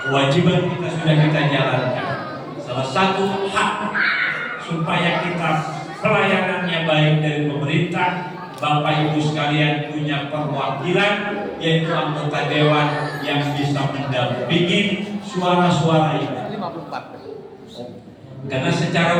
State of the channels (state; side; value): identical; both; correlation 1.00